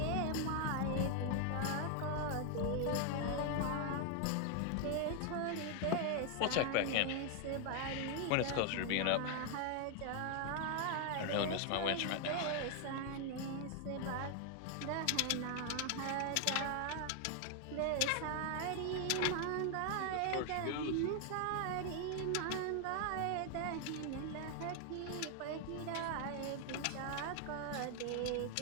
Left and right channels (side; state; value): both; different; correlation 0.00